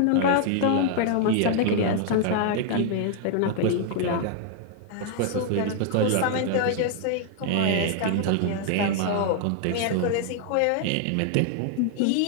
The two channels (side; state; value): both; different; correlation 0.00